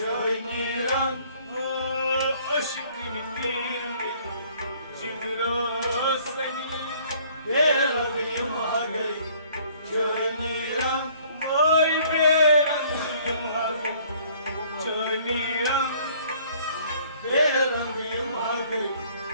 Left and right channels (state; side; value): inverted; both; correlation -0.58